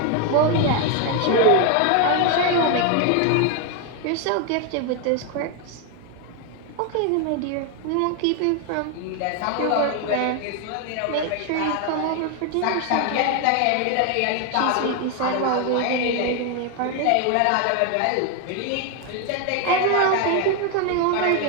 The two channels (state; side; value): different; both; correlation 0.01